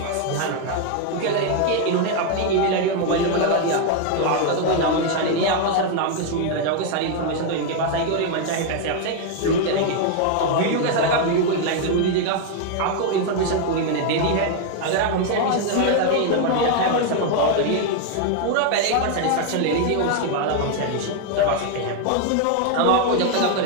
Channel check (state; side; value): different; both; correlation 0.01